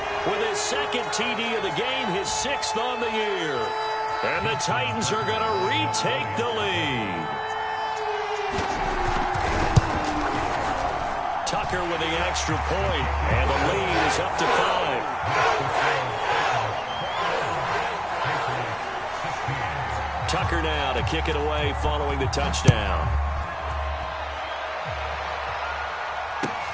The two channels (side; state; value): both; identical; correlation 1.00